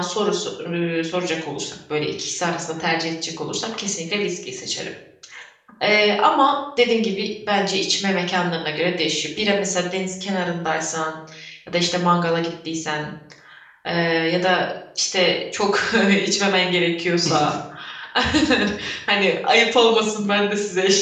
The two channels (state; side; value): identical; both; correlation 1.00